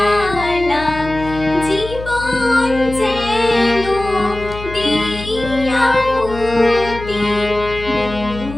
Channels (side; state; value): left; noise; hum, 12 dB below the sound